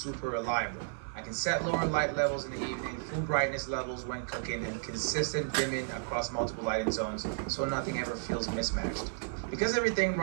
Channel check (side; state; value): left; silent; 56 dB below the other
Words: reliable. I can set lower light levels in the evening, full brightness levels when cooking, and consistent dimming across multiple lighting zones so nothing ever feels mismatched. Because everything